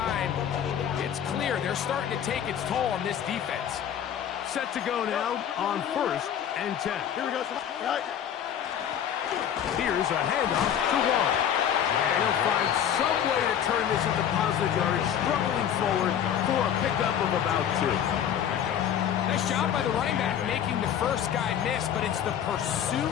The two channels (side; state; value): right; quieter; 9.3 dB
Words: it's clear they're starting to take its toll on this defense. Set to go now on 1st and 10. Here we go. Here's a handoff to Wall. And he'll find some way to turn this into positive yardage, struggling forward for a pickup of about 2. Nice job by the running back making the first guy miss, but it's the